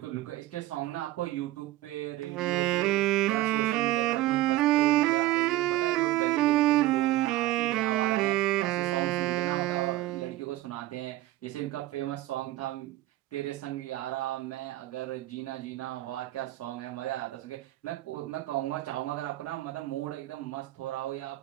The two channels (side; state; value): left; quieter; 16.1 dB